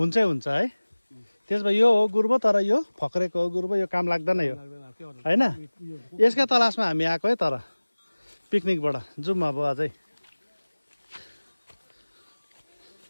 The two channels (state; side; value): inverted; both; correlation -1.00